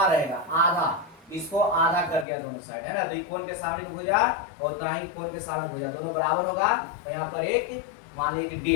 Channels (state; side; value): drops out; right; at 2.2 s